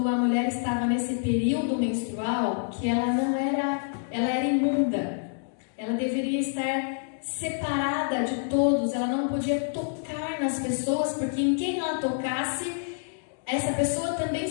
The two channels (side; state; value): right; silent; digital silence